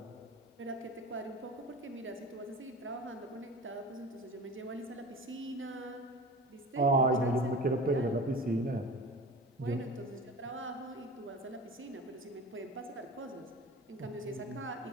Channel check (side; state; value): both; normal; correlation 0.35